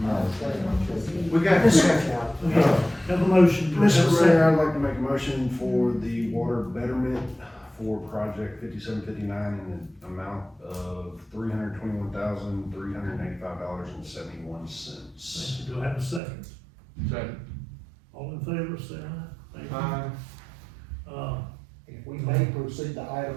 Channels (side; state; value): left; drops out; at 16.2 s